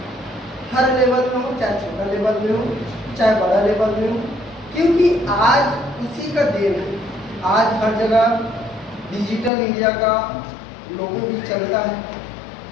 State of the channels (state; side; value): drops out; right; at 9.5 s